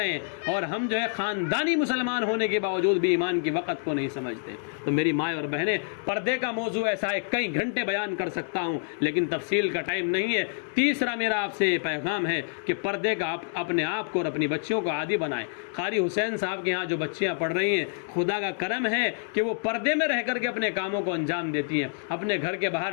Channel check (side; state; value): right; silent; digital silence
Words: ہیں، اور ہم جو ہے خاندانی مسلمان ہونے کے باوجود بھی ایمان کی وقت کو نہیں سمجھتے. تو میری مائیں اور بہنیں، پردے کا موضوع ایسا ہے کئی گھنٹے بیان کر سکتا ہوں لیکن تفصیل کا ٹائم نہیں ہے. تیسرا میرا آپ سے یہ پیغام ہے کہ پردے کا اپنے آپ کو اور اپنی بچیوں کو عادی بنائیں. قاری حسین صاحب کے یہاں جو بچیاں پڑھ رہی ہیں، خدا کا کرم ہے کہ وہ پردے میں رہ کر کے اپنے کاموں کو انجام دیتی ہیں. اپنے گھر کے